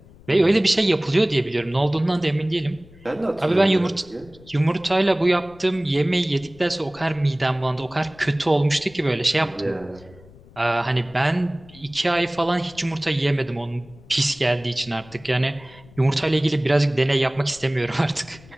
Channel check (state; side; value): noise; left; rumble, 23 dB below the sound